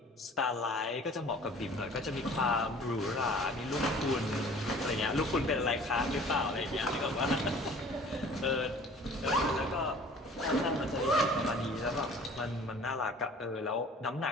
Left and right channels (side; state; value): both; normal; correlation 0.48